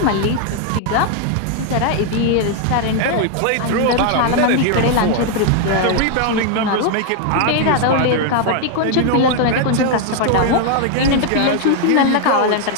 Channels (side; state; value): both; different; correlation 0.00